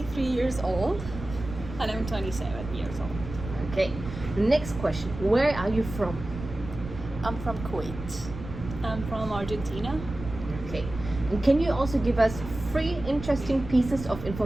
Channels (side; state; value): right; noise; rumble, 10 dB below the sound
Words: years old. And I'm 27 years old. Okay. Next question. Where are you from? I'm from Kuwait. I'm from Argentina. Okay. And can you also give us 3 interesting pieces of